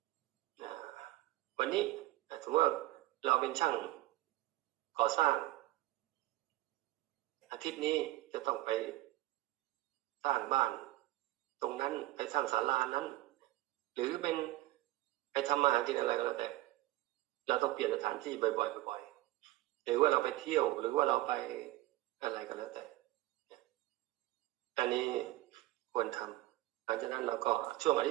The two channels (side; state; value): left; quieter; 17.3 dB